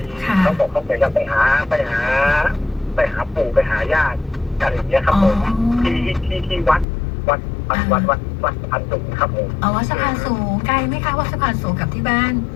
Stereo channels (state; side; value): drops out; right; at 6.9 s